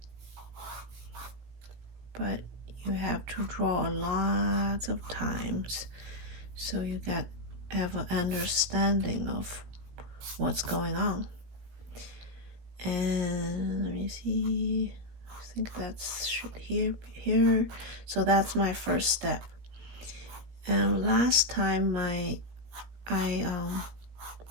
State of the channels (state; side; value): late; left; 17 ms